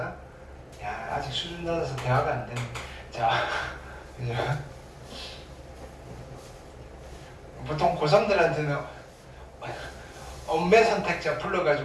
야, 아직 수준 낮아서 대화가 안 되네. 자, 그죠? 보통 고3들한테는 엄매 선택자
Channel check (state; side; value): identical; both; correlation 1.00